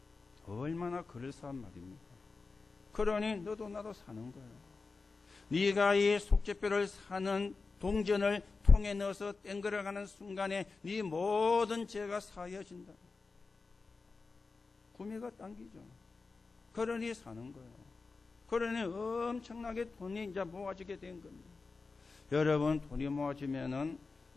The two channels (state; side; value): quieter; right; 4.2 dB